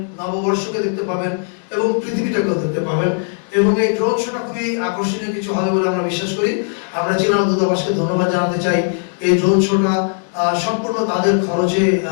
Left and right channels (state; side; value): silent; right; 67 dB below the other